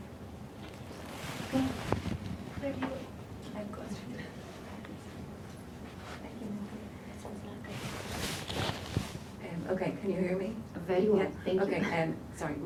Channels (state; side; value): identical; both; correlation 1.00